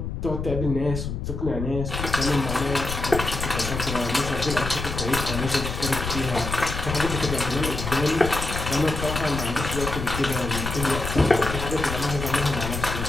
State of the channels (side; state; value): left; noise; rumble, 5 dB below the sound